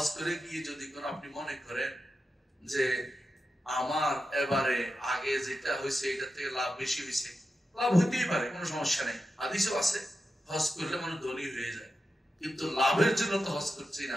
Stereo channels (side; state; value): both; normal; correlation 0.90